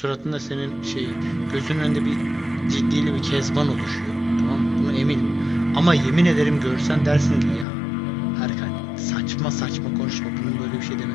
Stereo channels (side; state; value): right; drops out; at 7.7 s